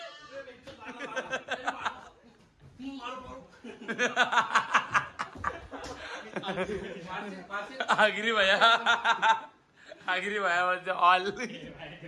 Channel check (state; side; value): identical; both; correlation 1.00